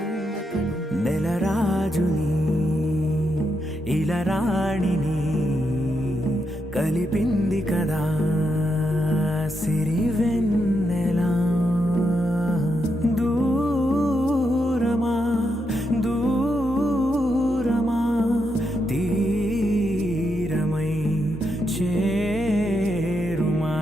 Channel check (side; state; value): both; normal; correlation 0.82